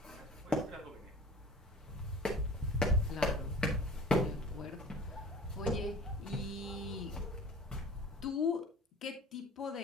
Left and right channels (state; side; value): normal; both; correlation 0.42